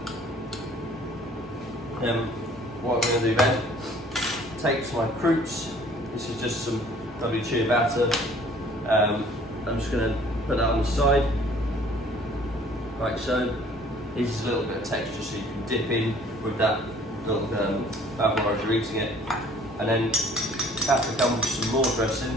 What I'm going to do then, take my croûtes. This is just some WC batter. I'm just going to put that on the side, like so. This is a little bit of texture so you can dip in with that little Bavarois as you're eating it. And then that becomes some more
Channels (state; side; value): normal; both; correlation 0.54